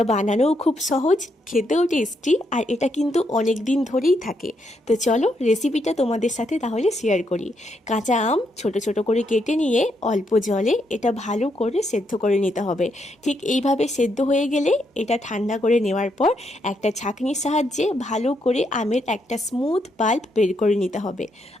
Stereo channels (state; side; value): normal; both; correlation 0.78